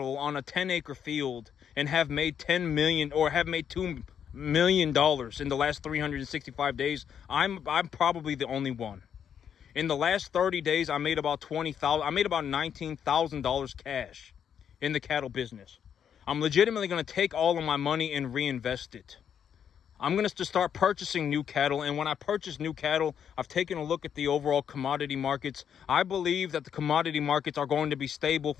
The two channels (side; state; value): right; quieter; 8.3 dB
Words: on a 10-acre field and have made 10 million or have made $2 million in the last 365 days? I'm probably the only one. In the last 30 days, I made about $19,000 cash in the cattle business. I'm legitimately going to take all of my money and reinvest it. I'm going to start purchasing new cattle. And when I purchase new cattle, I've taken a look at the overall commodity markets. I believe that the commodity markets are going to be stable